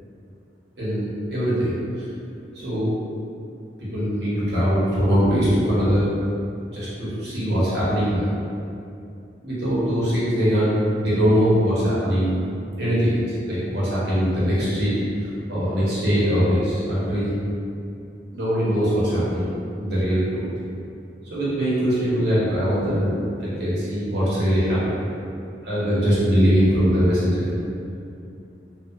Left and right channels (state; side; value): normal; both; correlation 0.78